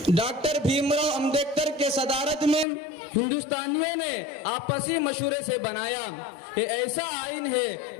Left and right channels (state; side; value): drops out; right; at 2.7 s